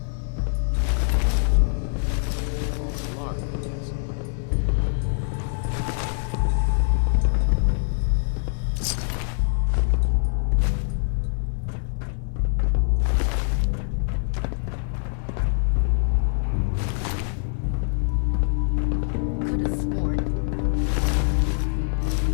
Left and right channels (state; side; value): silent; right; 62 dB below the other